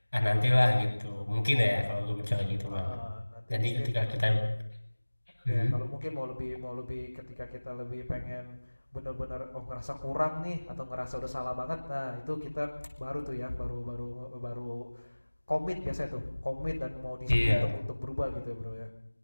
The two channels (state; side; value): inverted; both; correlation -1.00